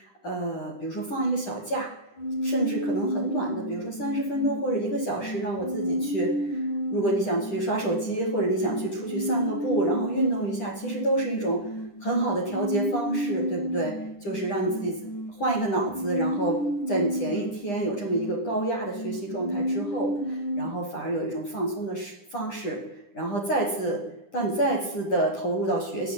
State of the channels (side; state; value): right; late; 10 ms